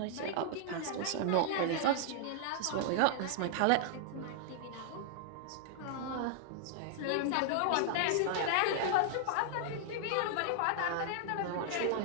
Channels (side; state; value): both; different; correlation -0.01